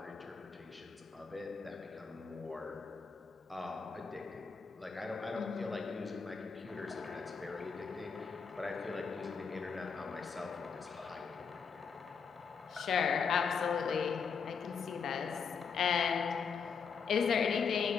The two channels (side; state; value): right; quieter; 5.8 dB